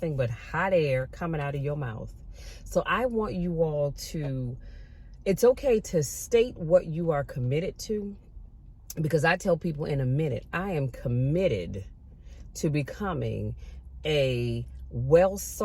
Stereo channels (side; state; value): both; identical; correlation 1.00